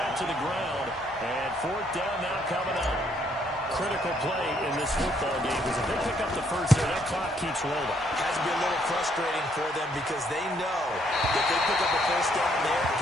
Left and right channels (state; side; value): normal; both; correlation 0.69